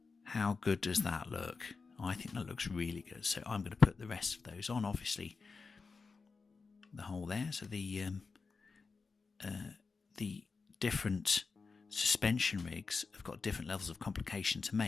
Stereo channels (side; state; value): right; quieter; 4.6 dB